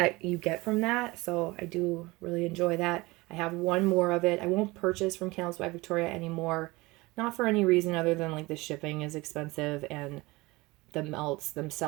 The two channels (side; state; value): left; quieter; 22.1 dB